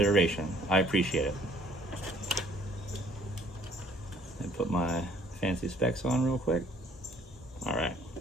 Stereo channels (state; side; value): normal; both; correlation 0.60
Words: I appreciate it. And put my fancy specs on real quick. All right.